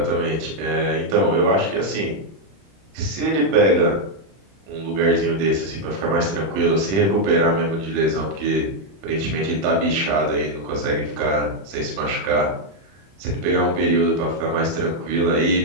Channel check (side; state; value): left; late; 31 ms